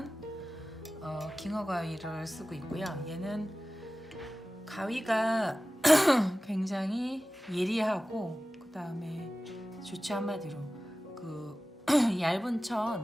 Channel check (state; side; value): normal; both; correlation 0.96